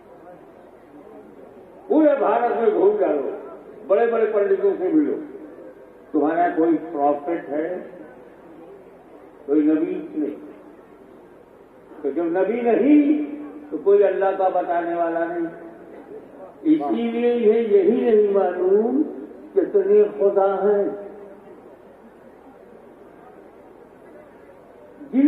पूरे भारत में घूम डालो, बड़े बड़े पंडितों से मिलो, तुम्हारा कोई प्रॉफिट है, कोई नबी नहीं। तो जब नबी नहीं तो कोई अल्लाह का बताने वाला नहीं। इसीलिए यही नहीं मालूम कितने खुदा हैं,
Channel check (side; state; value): both; identical; correlation 1.00